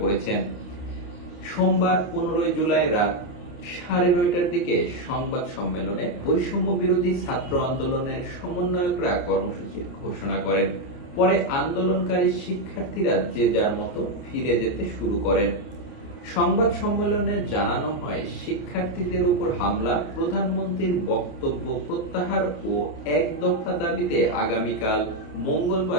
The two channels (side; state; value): right; late; 28 ms